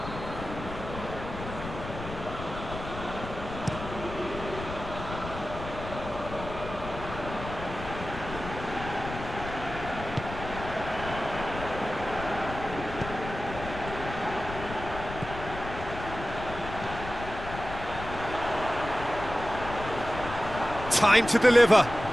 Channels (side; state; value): left; noise; rumble, 9 dB below the sound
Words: Time to deliver.